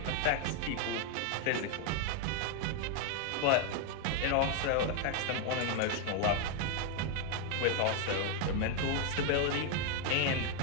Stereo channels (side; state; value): both; different; correlation 0.01